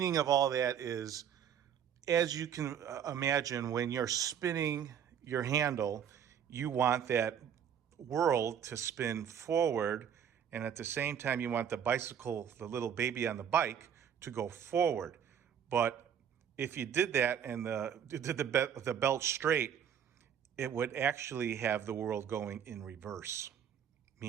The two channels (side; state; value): left; quieter; 8.6 dB